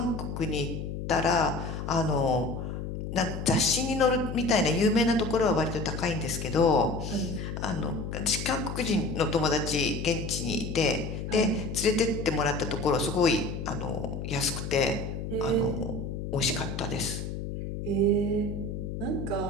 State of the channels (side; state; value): left; noise; hum, 5 dB below the sound